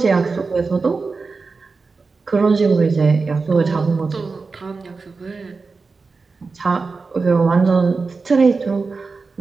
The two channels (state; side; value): quieter; left; 4.3 dB